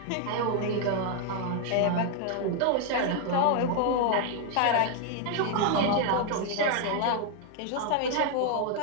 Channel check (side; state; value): both; different; correlation 0.00